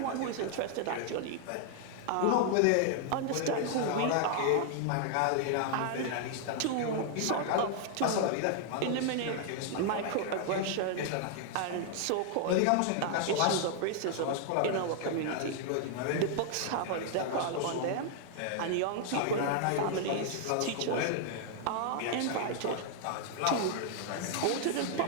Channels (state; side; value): different; both; correlation -0.01